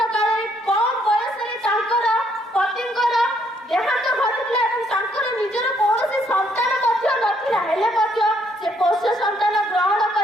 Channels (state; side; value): normal; both; correlation 0.70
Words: କାଳରେ କମ ବୟସରେ ତାଙ୍କର ପତିଙ୍କର ଦେହାନ୍ତ ଘଟିଥିଲା ଏବଂ ତାଙ୍କର ନିଜର କୌଣସି ସନ୍ତାନ ମଧ୍ୟ ନଥିଲା। ହେଲେ ମଧ୍ୟ ସେ ପୋଷ୍ୟ ସନ୍ତାନ ଗ୍ରହଣ